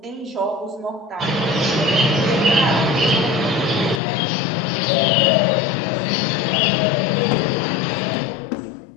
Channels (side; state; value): right; drops out; at 4.0 s